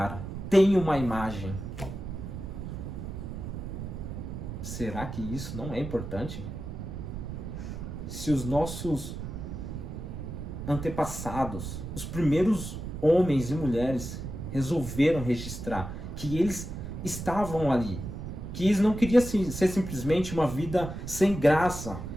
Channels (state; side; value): noise; right; rumble, 7 dB below the sound